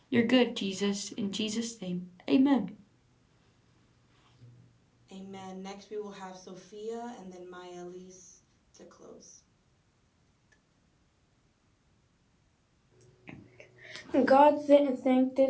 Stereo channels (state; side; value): identical; both; correlation 1.00